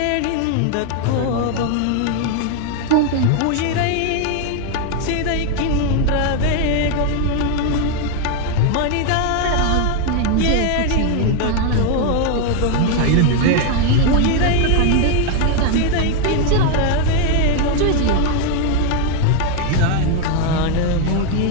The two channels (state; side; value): different; both; correlation 0.01